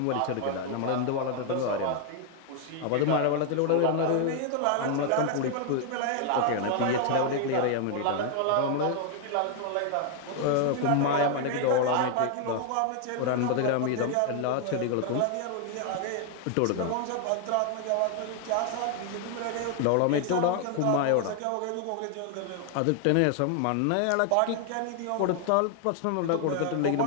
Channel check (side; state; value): both; different; correlation 0.00